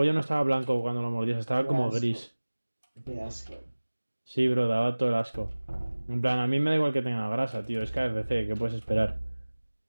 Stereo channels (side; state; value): both; inverted; correlation -1.00